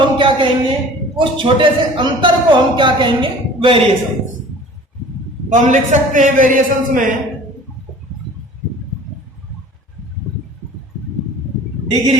क्या कहेंगे? उस छोटे से अंतर को हम क्या कहेंगे? वेरिएशंस। तो हम लिख सकते हैं वेरिएशंस में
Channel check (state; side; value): normal; both; correlation 0.45